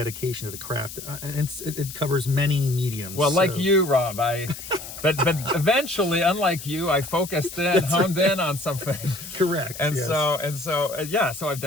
to the craft. And it covers many mediums. Well, like you, Rob, but eventually, unlike you, I focused in, honed in on something. Correct. And yes. So I've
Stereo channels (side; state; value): left; noise; hiss, 12 dB below the sound